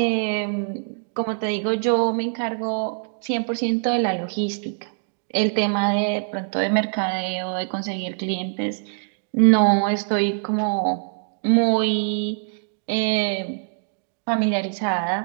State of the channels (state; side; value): silent; left; digital silence